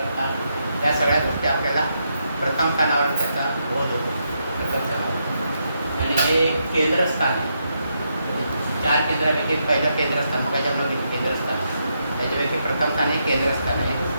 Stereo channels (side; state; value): both; inverted; correlation -0.81